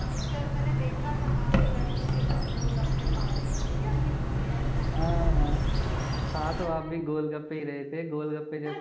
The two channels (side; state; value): both; identical; correlation 1.00